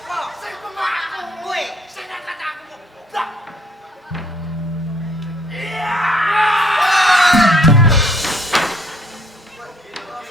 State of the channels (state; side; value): normal; both; correlation 0.63